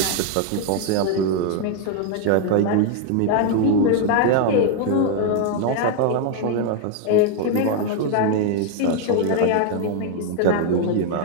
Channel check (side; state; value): both; different; correlation 0.01